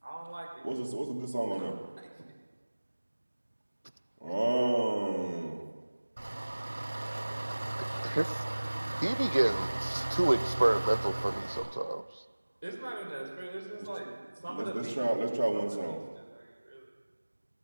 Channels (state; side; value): inverted; both; correlation -1.00